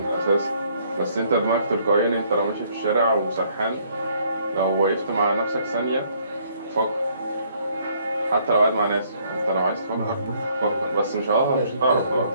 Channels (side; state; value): both; inverted; correlation -0.65